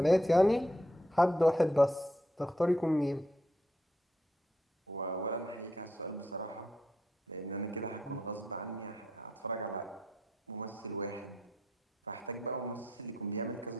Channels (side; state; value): both; normal; correlation 0.77